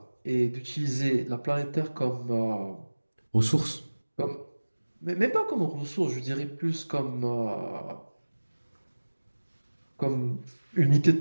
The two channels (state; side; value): inverted; both; correlation -1.00